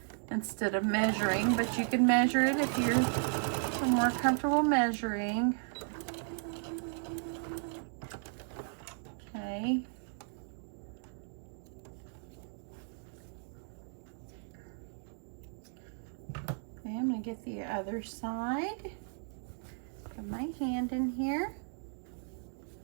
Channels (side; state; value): left; silent; 54 dB below the other